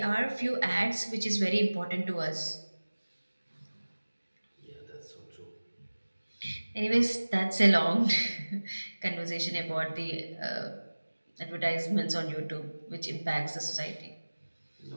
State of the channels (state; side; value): inverted; both; correlation -1.00